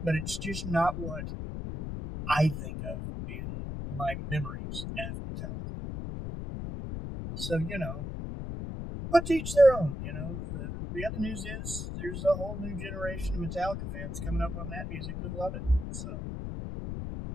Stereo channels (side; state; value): left; noise; rumble, 5 dB below the sound